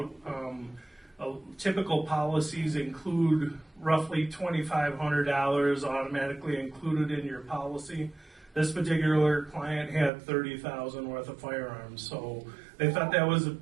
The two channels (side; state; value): left; drops out; at 10.1 s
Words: Typical policies include roughly $2,500 automatically included in your policy. This particular client had $30,000 worth of firearms, so they thought that was